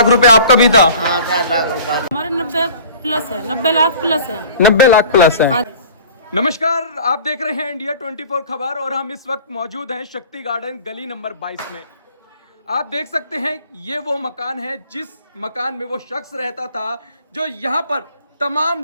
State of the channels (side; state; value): both; inverted; correlation -0.45